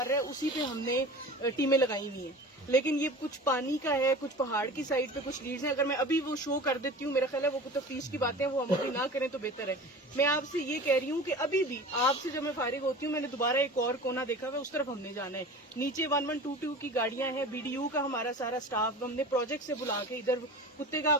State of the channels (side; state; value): both; normal; correlation 0.36